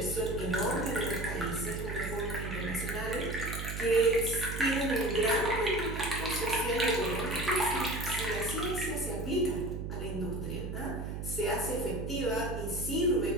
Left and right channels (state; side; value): noise; right; hum, 5 dB below the sound